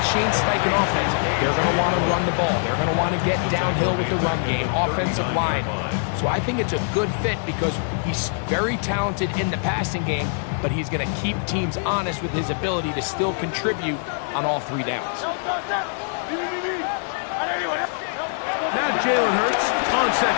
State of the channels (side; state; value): right; silent; digital silence